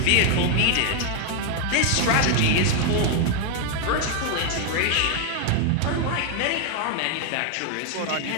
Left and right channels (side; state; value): both; different; correlation 0.01